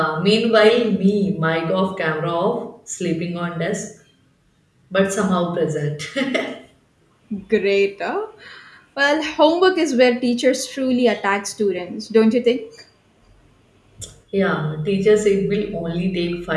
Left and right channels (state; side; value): identical; both; correlation 1.00